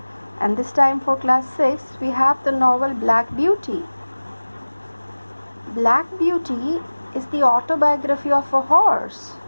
and this time for class 6 we have the novel Black Beauty. Black Beauty is the autobiography of a horse,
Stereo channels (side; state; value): both; inverted; correlation -1.00